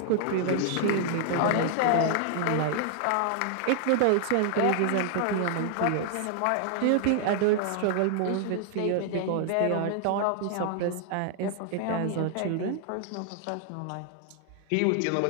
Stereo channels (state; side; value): different; both; correlation 0.00